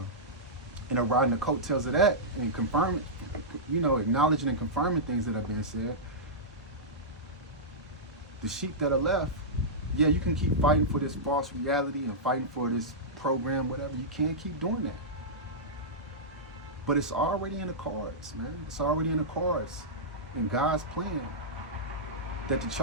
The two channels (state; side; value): normal; both; correlation -0.13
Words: and are riding the coattails of that and confirming, you know, acknowledging and confirming things that have been said. The sheep that are left, yeah, you can keep fighting for this false reality and fighting for this program, whatever. You can't keep doing that. But it's already in the cards, man. It's already in the cards in God's plan that the